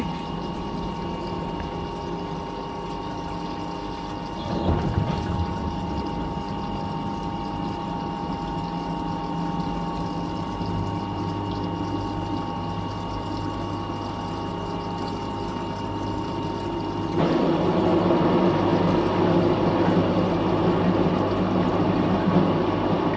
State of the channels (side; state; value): both; identical; correlation 1.00